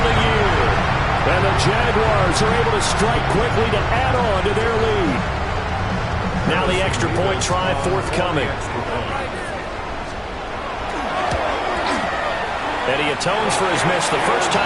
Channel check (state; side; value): identical; both; correlation 1.00